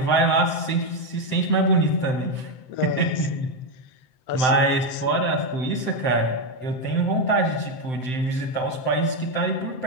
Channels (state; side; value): late; right; 7.8 ms